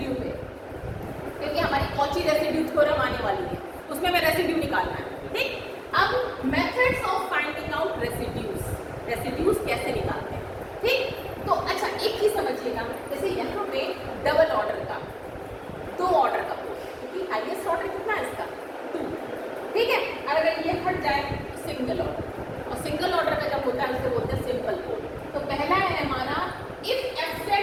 पे, क्योंकि हमारी कॉची रेसिड्यू थ्योरम आने वाली है, उसमें हमें रेसिड्यू निकालना है। ठीक, अब methods of finding out residues कैसे निकालते हैं। ठीक, तो अच्छा एक चीज समझिएगा, जैसे यहाँ पे डबल ऑर्डर का, 2 ऑर्डर का पोल, क्योंकि हाईएस्ट ऑर्डर कितना है इसका? 2। ठीक है, और अगर ये हट जाए तो सिंगल ऑर्डर, और सिंगल ऑर्डर का जब होता है उसको बोलते हैं सिंपल पोल। तो पहला है हमारा if fz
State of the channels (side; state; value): both; identical; correlation 1.00